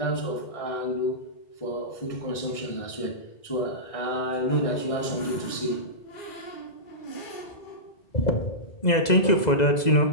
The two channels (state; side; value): late; right; 2.0 ms